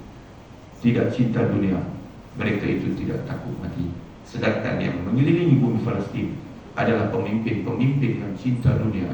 tidak cinta dunia, mereka itu tidak takut mati. Sedangkan yang mengelilingi bumi Palestin adalah pemimpin-pemimpin yang cinta dunia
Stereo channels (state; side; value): identical; both; correlation 1.00